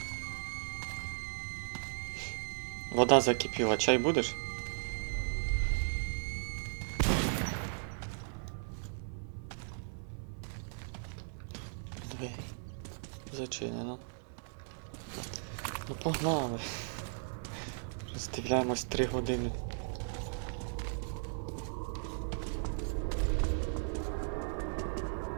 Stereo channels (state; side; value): silent; left; 53 dB below the other